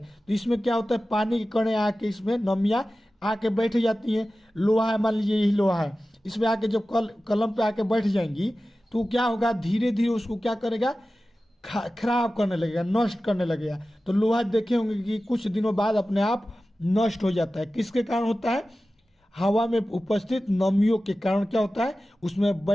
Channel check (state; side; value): normal; both; correlation 0.95